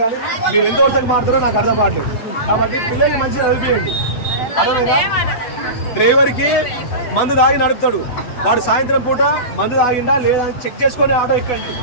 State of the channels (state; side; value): late; right; 8.1 ms